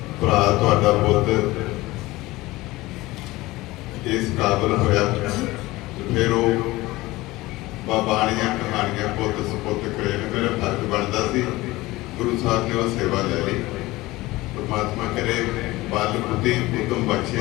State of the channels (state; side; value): quieter; right; 19.5 dB